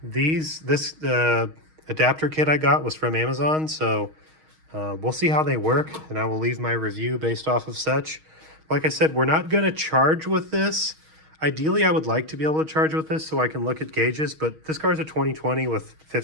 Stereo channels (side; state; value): left; late; 6.4 ms